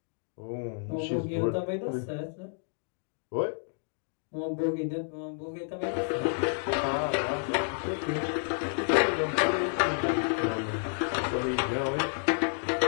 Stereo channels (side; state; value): right; silent; digital silence